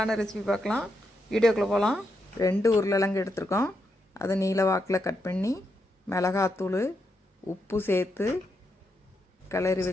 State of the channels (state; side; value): normal; both; correlation 0.82